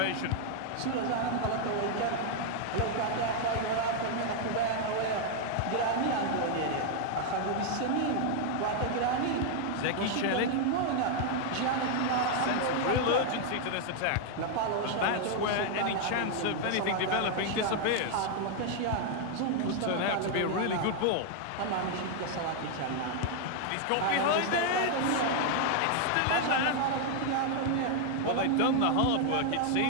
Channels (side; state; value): both; different; correlation 0.00